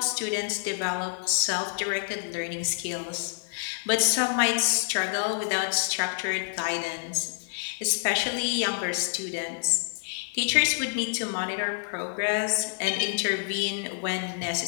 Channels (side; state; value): right; silent; digital silence